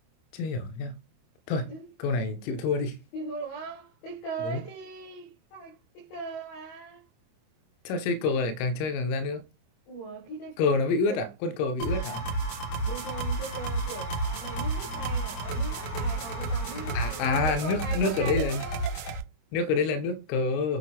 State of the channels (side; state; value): right; late; 25 ms